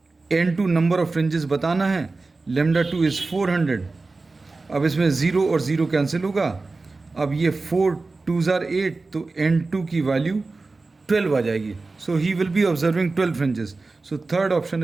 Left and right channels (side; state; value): left; quieter; 3.6 dB